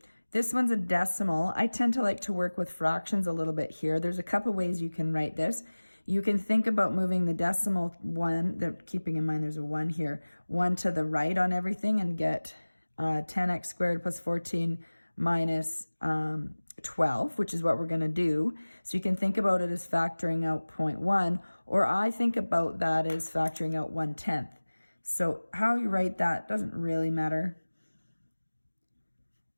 this one's a decimal. I tend to like to work with fractions a little bit here. There's a couple ways you can write this. You can think about moving the decimal 1, keeping in mind there's a 1 here, 1 to the right on everything and get 10x squared plus 14 minus 12, which is what we're going to do. So you can think about it as factoring out 0.1, or I think about that as factoring out 1/10. So how you write that doesn't really matter.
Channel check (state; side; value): inverted; both; correlation -1.00